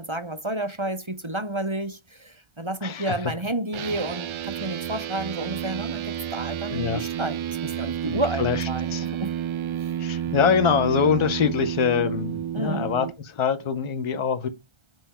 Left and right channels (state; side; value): late; left; 1.3 ms